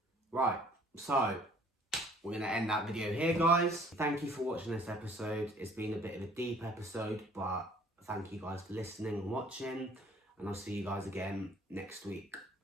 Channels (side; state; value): both; normal; correlation 0.56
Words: Right, so we're going to end that video here, guys. Thank you for watching this episode. It's been a bit of a deep episode, but thank you guys for listening and watching, and I'll see you guys again next week.